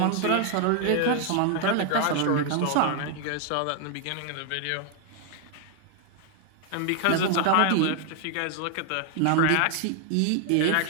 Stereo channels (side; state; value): both; different; correlation 0.01